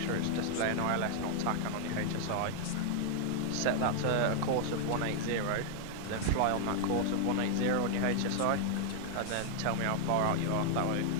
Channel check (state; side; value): different; both; correlation 0.00